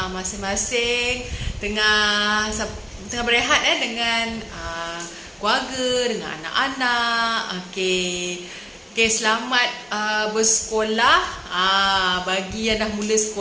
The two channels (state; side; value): identical; both; correlation 1.00